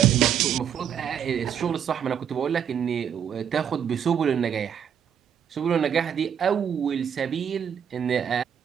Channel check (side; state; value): left; quieter; 8.5 dB